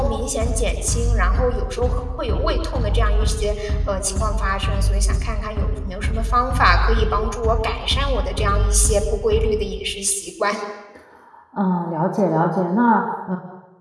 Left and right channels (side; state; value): both; identical; correlation 1.00